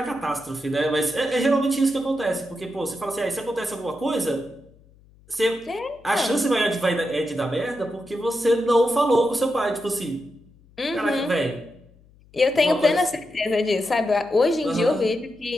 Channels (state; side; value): noise; left; hum, 28 dB below the sound